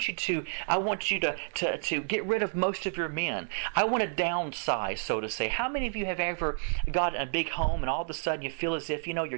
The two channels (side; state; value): left; silent; 58 dB below the other